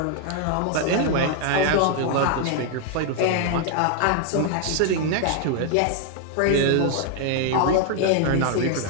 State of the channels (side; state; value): both; different; correlation 0.00